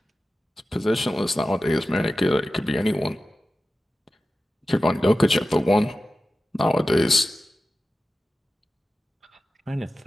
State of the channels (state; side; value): normal; both; correlation 0.95